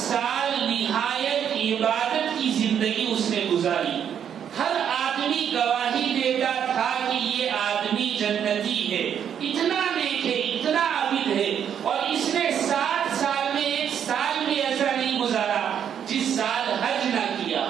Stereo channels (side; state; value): left; quieter; 8.7 dB